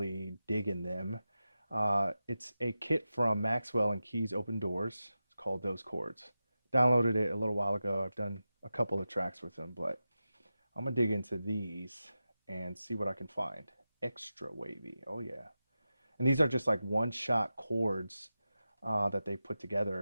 digging them. It's a kit from MXXWLL and KeysOpenDoors. It's called Those Chords. Downloaded it a little while ago. I've done a couple of tracks with them, but I'm gonna dig into these and see what I can find. Extra wavy, oh yeah. And these are just like one-shot chords that they put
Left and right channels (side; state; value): both; inverted; correlation -0.93